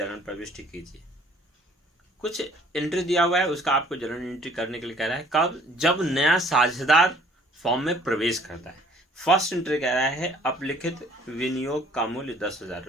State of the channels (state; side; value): normal; both; correlation 0.57